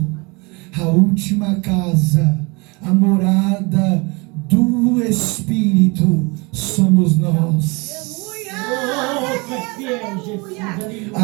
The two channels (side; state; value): left; quieter; 27.8 dB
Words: a última casa, a morada do Espírito somos nós.